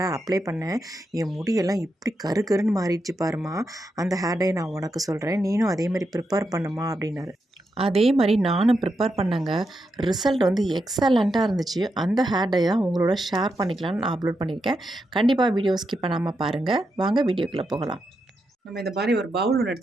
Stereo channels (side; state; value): both; normal; correlation 0.85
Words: அப்ளை பண்ணேன். என் முடியெல்லாம் இப்படி கருகருன்னு மாறிடுச்சு பாரும்மா. அந்த ஹேர் டை நான் உனக்கு சொல்கிறேன். நீனும் அதே மாதிரி ப்ரிப்பேர் பண்ணுமா" அப்படின்னாரு. அதே மாரி நானும் ப்ரிப்பேர் பண்ணேங்க. ரிசல்ட் வந்து எக்ஸலண்ட்டா இருந்துச்சு. அந்த ஹேர் டை தான் உங்களோட ஷேர் பண்ணிக்கலான்னு நான் அப்லோட் பண்ணியிருக்கேன். கண்டிப்பா வீடியோ ஸ்கிப் பண்ணாம பாருங்க. வாங்க வீடியோக்குள்ள போகலாம். நம்ம இந்த மாரி ஒரு பவுல் ஒண்ணு